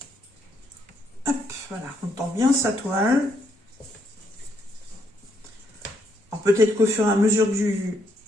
hop, voilà, on tend bien sa toile. Alors peut-être qu'au fur et à mesure du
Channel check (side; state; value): both; normal; correlation 0.74